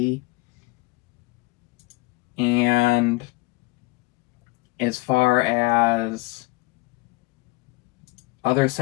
And as far as other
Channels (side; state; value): right; quieter; 24.4 dB